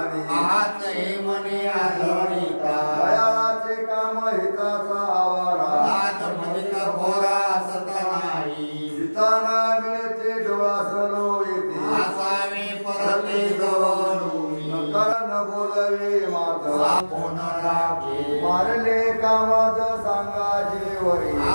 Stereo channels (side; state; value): both; inverted; correlation -1.00